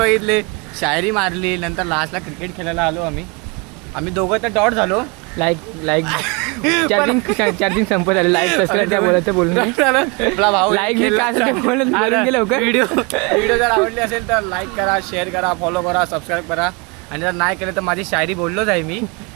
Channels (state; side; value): quieter; left; 29.5 dB